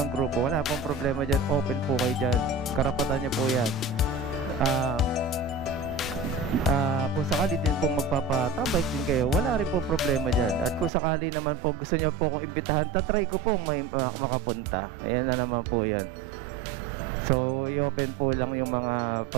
grupo, wala pong problema dyan, open po kayo dyan, karapatan nyo po yan. Kung sakali din pong magpapatambike din kayo, wala rin pong problema dyan. At kung sakali naman po gusto nyo po kong imbitahan, tatry ko pong may makapunta. Ayan na naman po yan. So i-open po lang yung mga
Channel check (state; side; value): drops out; left; at 10.9 s